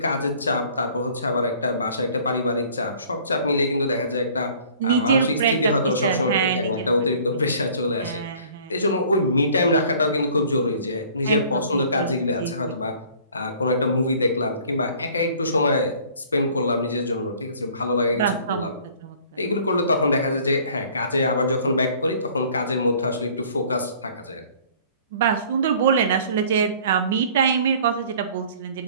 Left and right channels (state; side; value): inverted; both; correlation -0.52